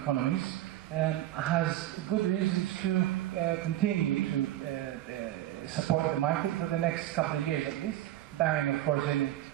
has good reasons to continue to support the market for the next couple of years at least, barring of course any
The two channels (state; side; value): quieter; left; 13.8 dB